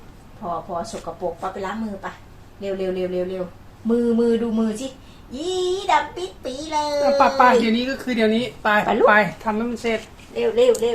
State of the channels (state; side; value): identical; both; correlation 1.00